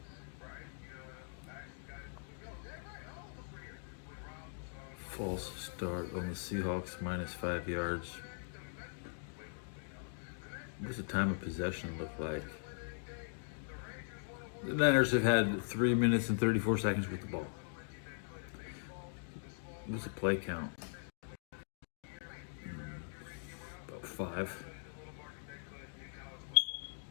False start on the Seahawks, -5 yards. What does the time of possession look like? The Niners have had 3 minutes and 34 seconds with the ball. What's the play count? About 5.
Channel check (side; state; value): right; silent; digital silence